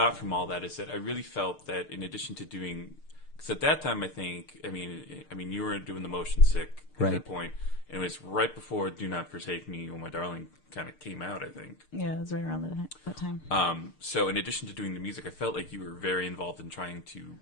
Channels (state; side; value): late; right; 6.6 ms